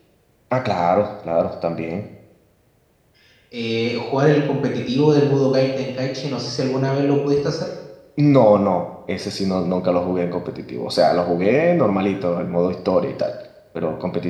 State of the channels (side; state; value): both; identical; correlation 1.00